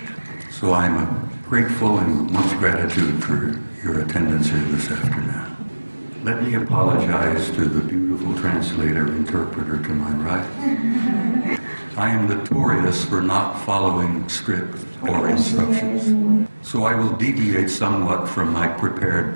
So I'm grateful and much gratitude for your attendance here this afternoon. Let me apologize to the beautiful interpreter to my right. I am notorious for not following script or instructions, so I will deviate somewhat from my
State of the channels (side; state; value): both; inverted; correlation -1.00